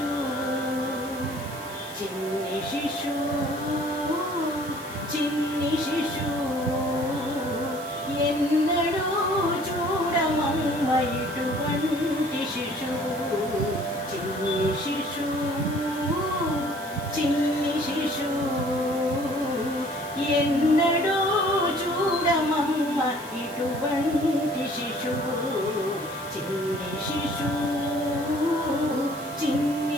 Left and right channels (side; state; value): right; noise; hiss, 16 dB below the sound